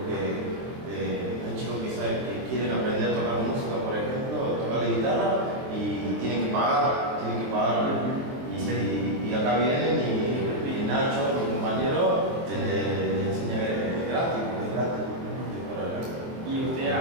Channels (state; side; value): late; left; 24 ms